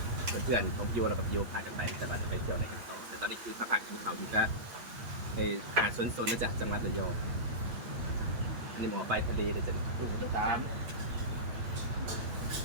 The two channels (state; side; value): late; left; 8.6 ms